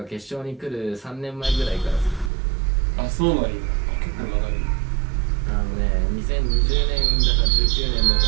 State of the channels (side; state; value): left; drops out; at 2.3 s